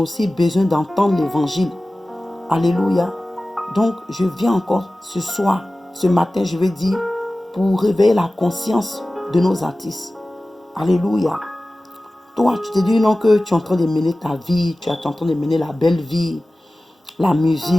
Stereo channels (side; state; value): both; normal; correlation 0.97